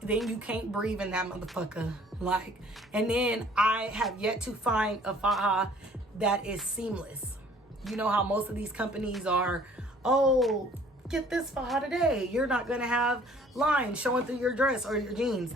Then you can't breathe in that motherfucker. Like, and then I have yet to find a faja that is seamless. You know how most of these companies are, oh, get this faja today. You're not gonna have lines showing through your dress or your jeans.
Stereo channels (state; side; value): normal; both; correlation 0.55